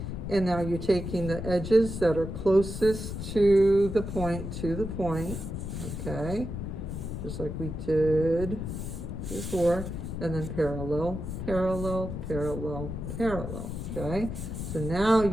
and now you're taking the edges that are closest to the point, okay? Just like we did before, and then parallel, parallel, parallel, parallel, okay? So now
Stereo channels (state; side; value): noise; left; rumble, 6 dB below the sound